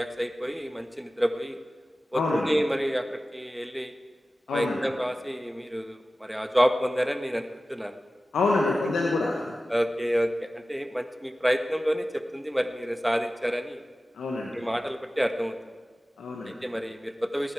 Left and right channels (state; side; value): normal; both; correlation 0.95